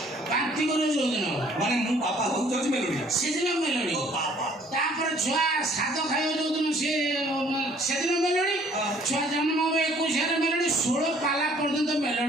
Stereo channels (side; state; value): both; normal; correlation 0.58